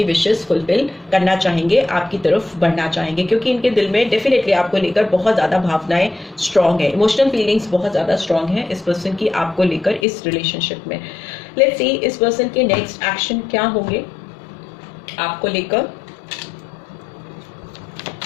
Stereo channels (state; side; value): drops out; right; at 10.1 s